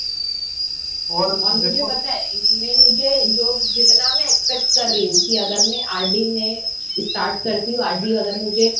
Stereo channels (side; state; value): both; identical; correlation 1.00